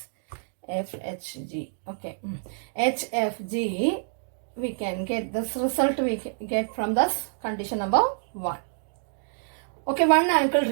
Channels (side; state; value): left; silent; digital silence